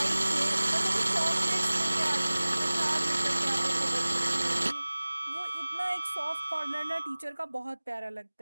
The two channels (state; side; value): inverted; both; correlation -1.00